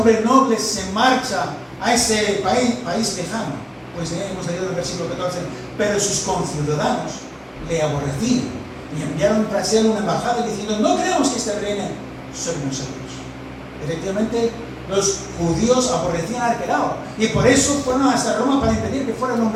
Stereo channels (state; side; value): identical; both; correlation 1.00